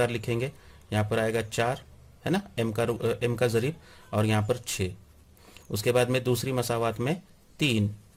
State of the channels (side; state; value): both; identical; correlation 1.00